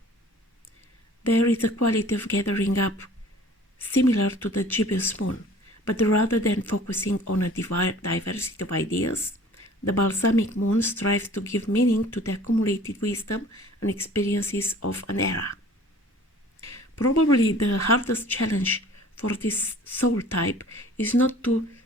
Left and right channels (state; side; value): normal; both; correlation 0.49